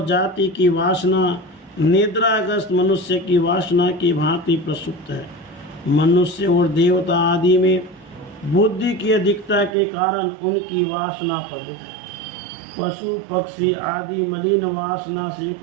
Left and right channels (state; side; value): drops out; left; at 9.8 s